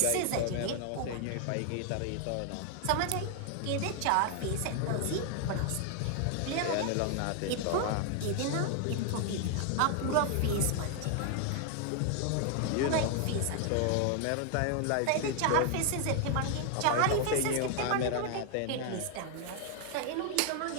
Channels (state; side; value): different; both; correlation 0.00